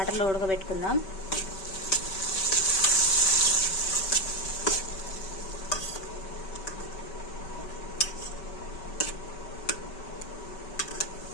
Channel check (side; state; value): right; late; 5.2 ms